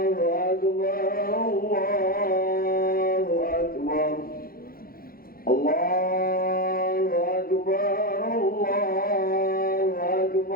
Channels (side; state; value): right; late; 0.43 ms